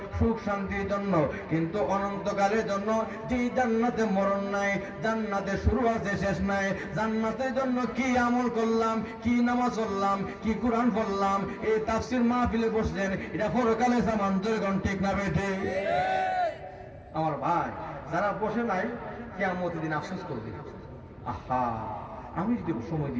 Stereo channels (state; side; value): identical; both; correlation 1.00